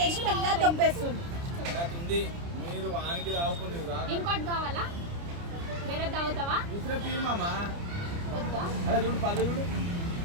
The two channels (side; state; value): left; late; 29 ms